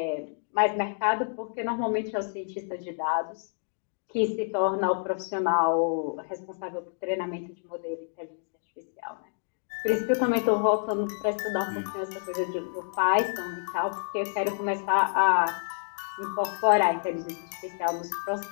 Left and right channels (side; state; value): right; silent; digital silence